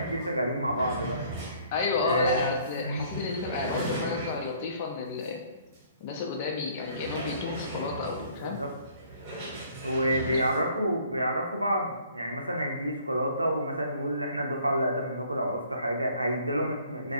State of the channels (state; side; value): inverted; both; correlation -0.58